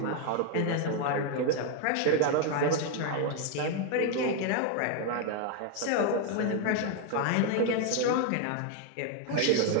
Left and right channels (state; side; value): different; both; correlation 0.01